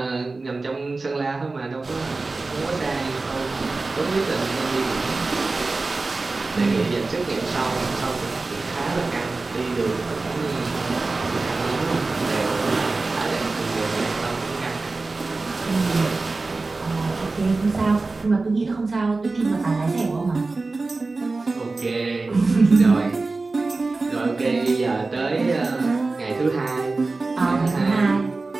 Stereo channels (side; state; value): left; quieter; 3.6 dB